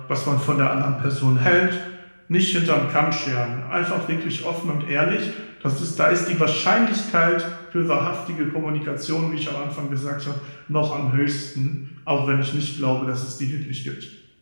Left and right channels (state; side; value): inverted; both; correlation -1.00